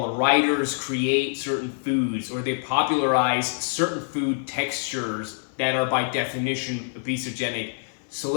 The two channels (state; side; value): silent; right; digital silence